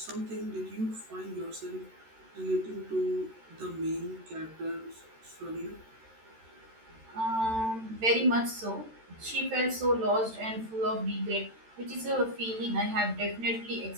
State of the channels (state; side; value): late; left; 13 ms